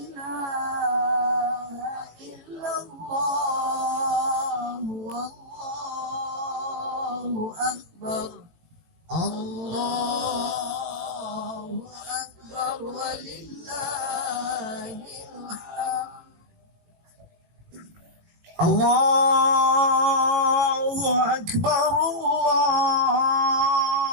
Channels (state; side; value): late; left; 18 ms